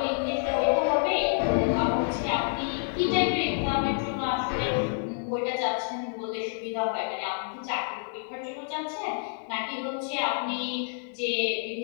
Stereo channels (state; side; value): silent; right; digital silence